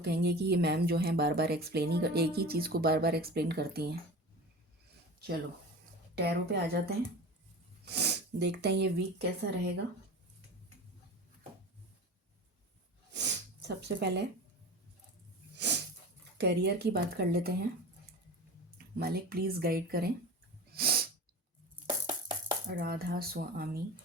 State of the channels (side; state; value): both; normal; correlation 0.33